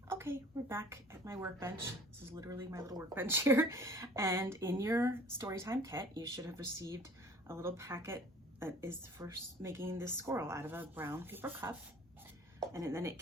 Okay, we're back at my workbench. This is literally my little workbench here. And in your Storytime kit, you should have received a little packet that is for making this squirrel out of a brown paper cup. And then it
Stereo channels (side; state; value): both; normal; correlation 0.50